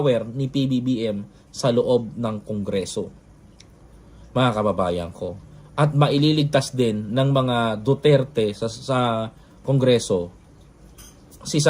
ni PBBM sa loob ng Kongreso. Mga kababayan ko. At maililigtas din ng mga Duterte sa Kongreso si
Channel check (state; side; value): identical; both; correlation 1.00